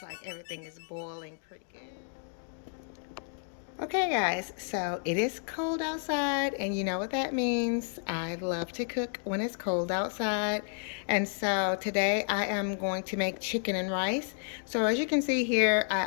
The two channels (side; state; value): right; silent; 57 dB below the other